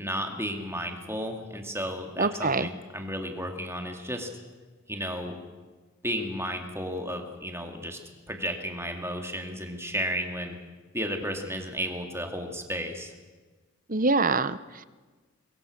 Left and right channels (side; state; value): both; normal; correlation 0.10